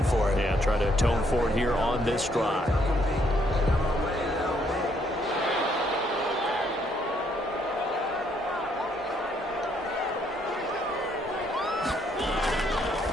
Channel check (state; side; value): normal; both; correlation 0.70